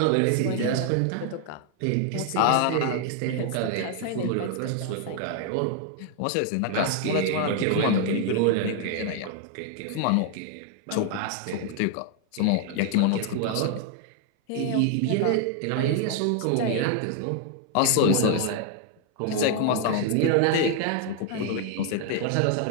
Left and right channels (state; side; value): different; both; correlation 0.00